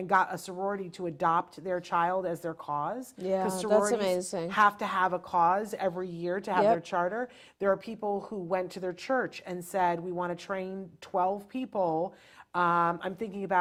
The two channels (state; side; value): identical; both; correlation 1.00